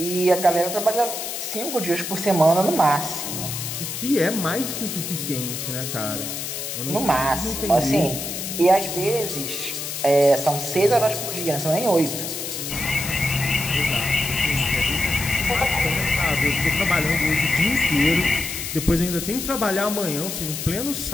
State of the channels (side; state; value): left; noise; hiss, 5 dB below the sound